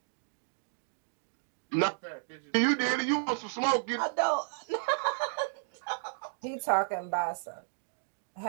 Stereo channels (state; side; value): silent; left; digital silence